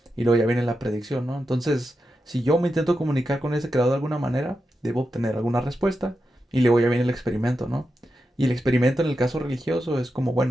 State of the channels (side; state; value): both; normal; correlation 0.89